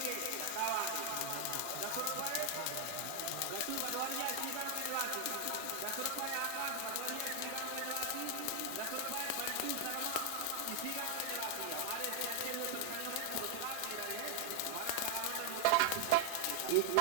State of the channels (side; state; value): both; different; correlation 0.00